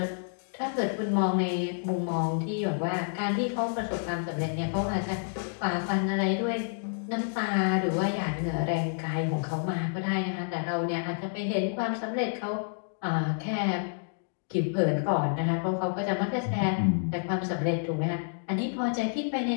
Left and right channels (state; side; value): silent; right; digital silence